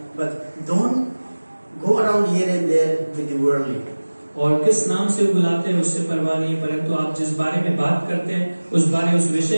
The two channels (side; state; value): both; inverted; correlation -1.00